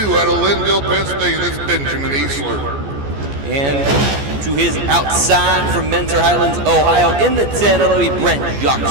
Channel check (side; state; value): left; late; 14 ms